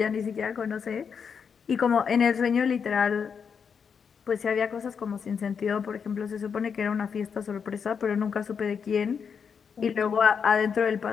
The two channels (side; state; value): right; quieter; 6.5 dB